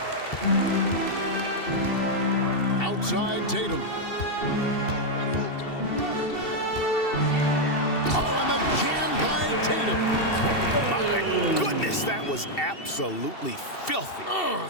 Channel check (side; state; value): right; late; 2.7 ms